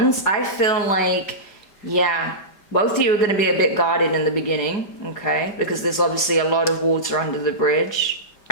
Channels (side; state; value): right; late; 4.9 ms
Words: I feel like, yeah, both of you are going to be a bit guarded in the beginning, okay? Because there's obviously a lot of water under the bridge.